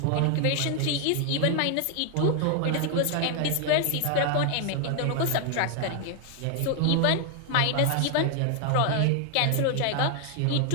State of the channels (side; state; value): both; different; correlation 0.00